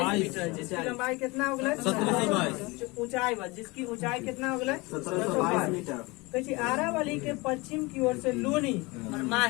मीटर है। जिसकी लंबाई कितना हो गया? 1722। ऊंचाई बस जिसकी ऊंचाई कितना हो गया? 1722 मीटर। कैसे आरावली के पश्चिम की ओर से लूनी और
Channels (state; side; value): quieter; right; 24.6 dB